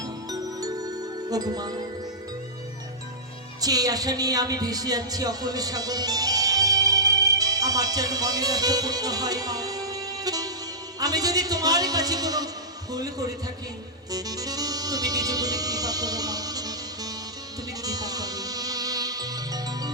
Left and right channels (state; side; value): normal; both; correlation -0.15